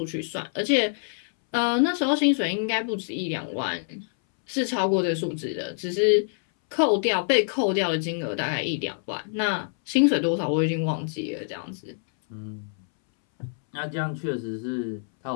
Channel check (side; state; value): right; silent; 61 dB below the other